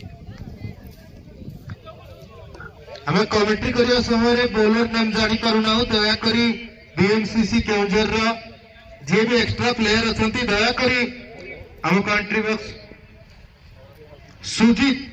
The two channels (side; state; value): both; identical; correlation 1.00